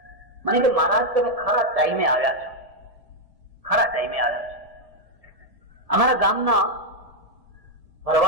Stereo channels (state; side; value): late; left; 1.7 ms